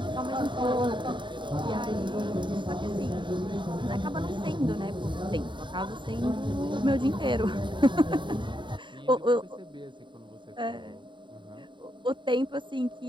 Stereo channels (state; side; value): late; left; 0.23 ms